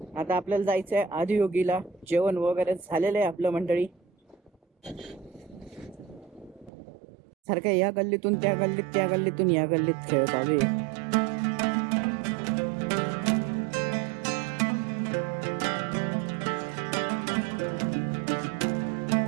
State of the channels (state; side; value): drops out; left; at 6.7 s